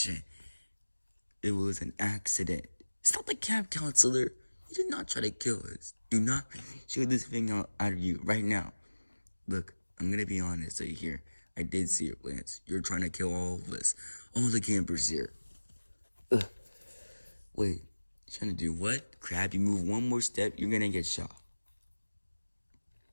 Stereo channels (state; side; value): inverted; both; correlation -1.00